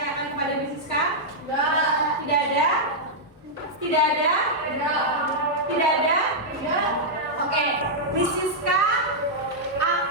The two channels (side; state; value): both; normal; correlation -0.07